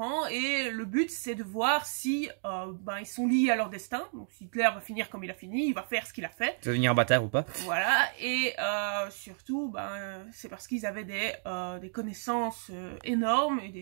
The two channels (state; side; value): silent; left; digital silence